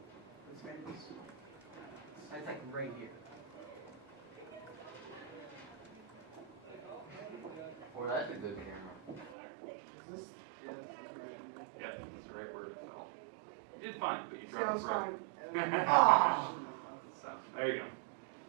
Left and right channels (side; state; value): left; drops out; at 9.3 s